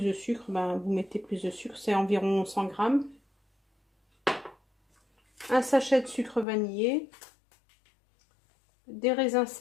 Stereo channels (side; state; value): right; drops out; at 6.5 s